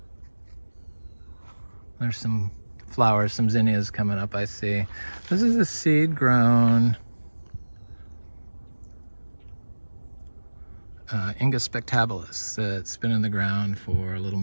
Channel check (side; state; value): both; inverted; correlation -1.00